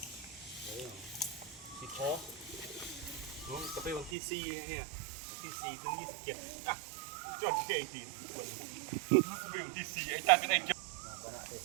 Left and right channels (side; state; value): left; drops out; at 4.2 s